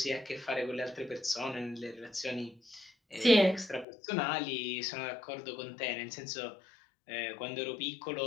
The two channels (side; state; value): right; drops out; at 3.9 s